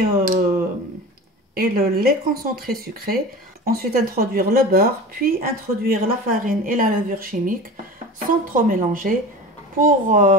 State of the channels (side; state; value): both; normal; correlation 0.33